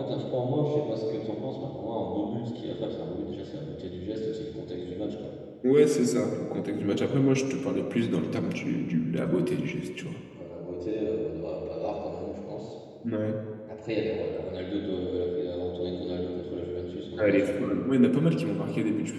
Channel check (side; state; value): both; identical; correlation 1.00